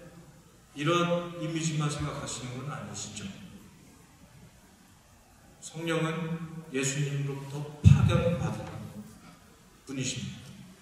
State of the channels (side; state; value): both; identical; correlation 1.00